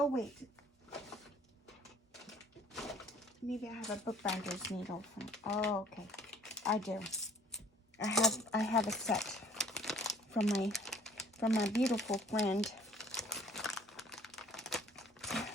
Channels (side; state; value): both; normal; correlation 0.55